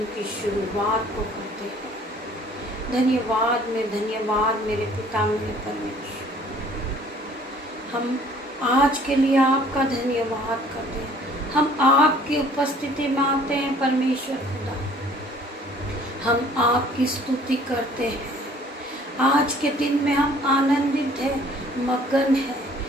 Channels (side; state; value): both; normal; correlation 0.54